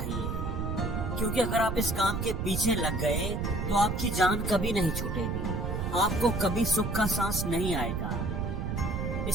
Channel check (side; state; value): right; noise; rumble, 2 dB below the sound